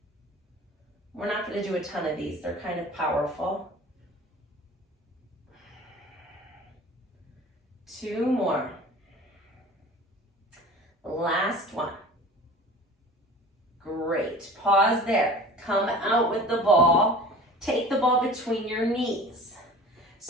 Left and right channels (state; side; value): normal; both; correlation 0.41